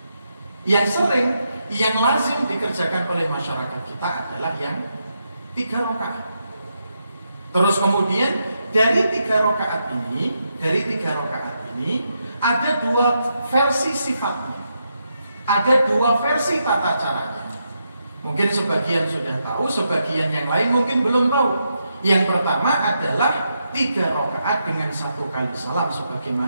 Yang sering, yang lazim dikerjakan oleh masyarakat kita adalah yang 3 rakaat. Terus kemudian dari 3 rakaat ini ada 2 versi sifatnya. Ada 2 versi tata caranya. Mungkin sebagian sudah tahu, sebagian yang lain mungkin belum tahu. Yang pertama adalah 3 rakaat dengan 1 kali salam,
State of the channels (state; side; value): inverted; both; correlation -0.83